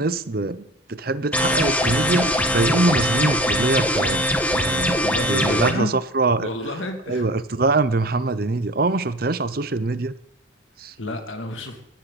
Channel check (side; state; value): both; normal; correlation 0.38